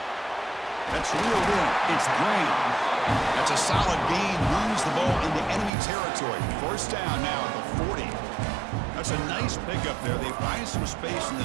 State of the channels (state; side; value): drops out; left; at 5.7 s